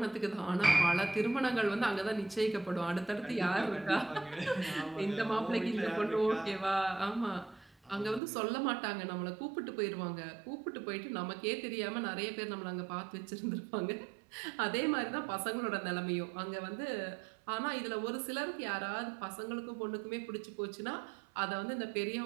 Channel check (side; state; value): left; drops out; at 8.2 s